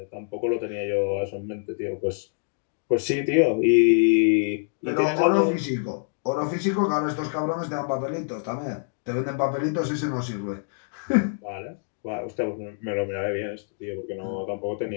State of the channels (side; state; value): right; silent; digital silence